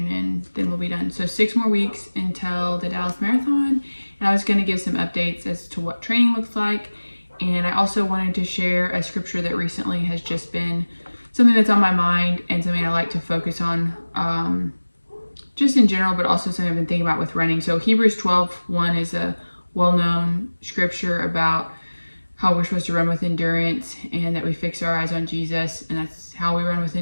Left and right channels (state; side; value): inverted; both; correlation -1.00